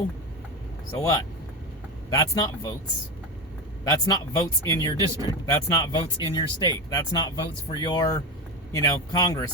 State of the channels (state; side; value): normal; both; correlation 0.17